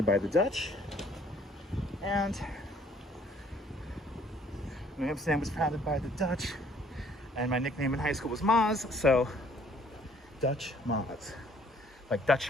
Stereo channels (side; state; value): both; normal; correlation 0.61